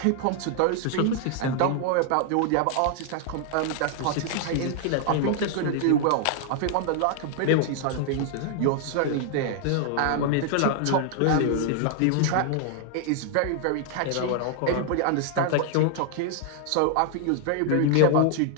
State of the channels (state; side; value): different; both; correlation 0.00